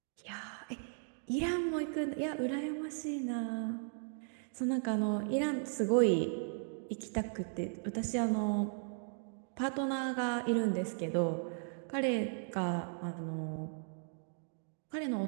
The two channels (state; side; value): silent; left; digital silence